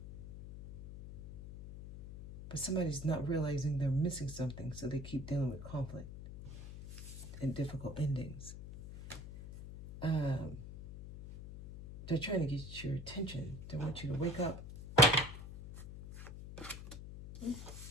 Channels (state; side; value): noise; left; hum, 11 dB below the sound